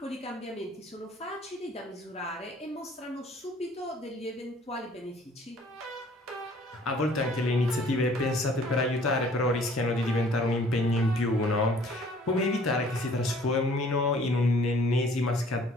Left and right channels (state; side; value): normal; both; correlation 0.56